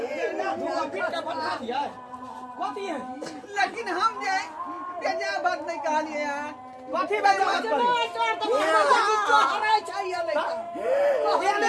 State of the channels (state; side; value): identical; both; correlation 1.00